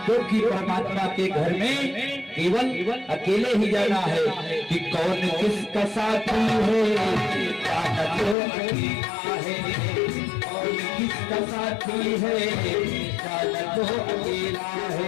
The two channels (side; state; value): right; drops out; at 8.3 s